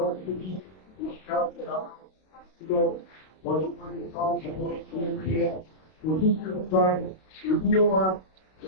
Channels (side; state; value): right; late; 32 ms